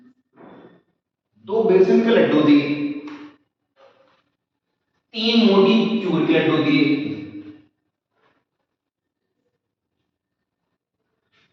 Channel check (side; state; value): both; identical; correlation 1.00